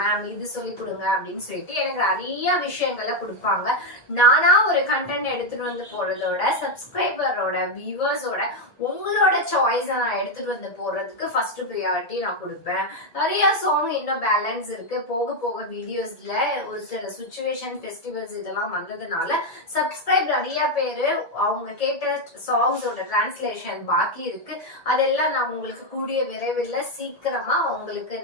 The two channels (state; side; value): late; right; 1.6 ms